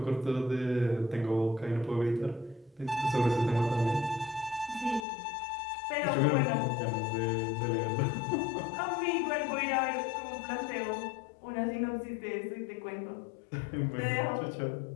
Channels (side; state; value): right; drops out; at 5.1 s